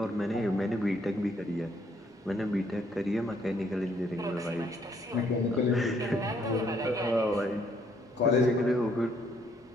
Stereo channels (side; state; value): both; normal; correlation 0.68